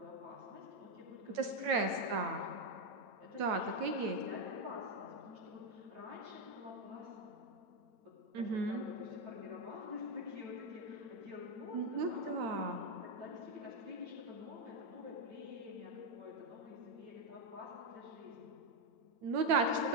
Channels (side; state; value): left; late; 9.0 ms